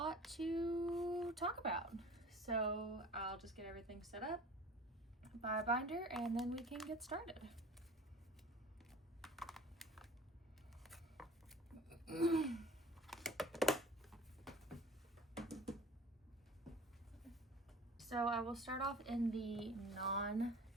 to talk about. So I'll just get everything set up by a binder and then we can get started. So I will start off in the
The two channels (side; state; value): both; normal; correlation 0.43